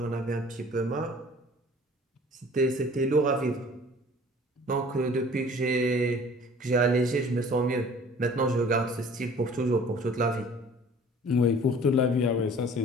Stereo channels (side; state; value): both; normal; correlation 0.49